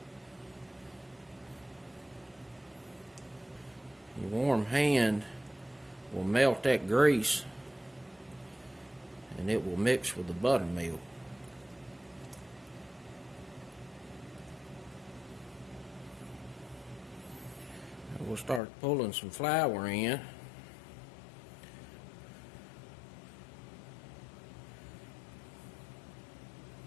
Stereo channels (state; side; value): drops out; right; at 18.6 s